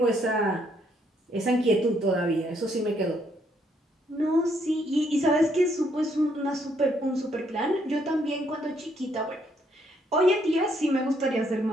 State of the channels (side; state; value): both; normal; correlation 0.71